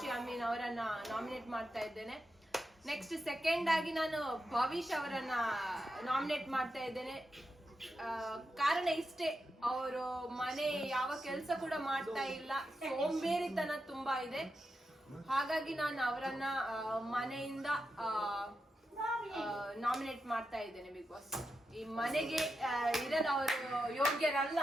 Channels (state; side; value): normal; both; correlation 0.87